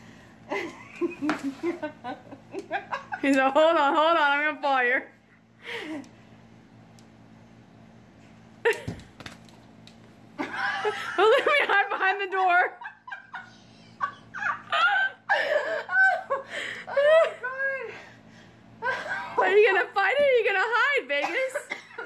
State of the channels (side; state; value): both; identical; correlation 1.00